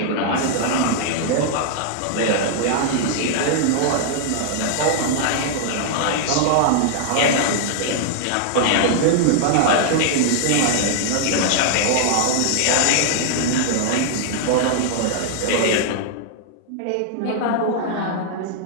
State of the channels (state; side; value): different; both; correlation -0.01